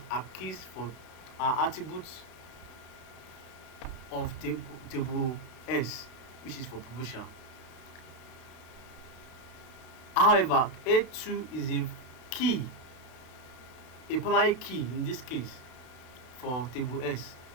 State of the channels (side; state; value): right; late; 32 ms